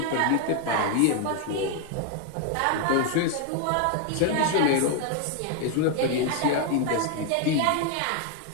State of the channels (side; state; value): both; different; correlation 0.01